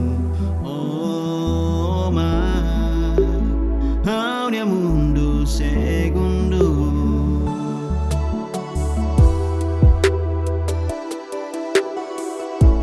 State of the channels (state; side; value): identical; both; correlation 1.00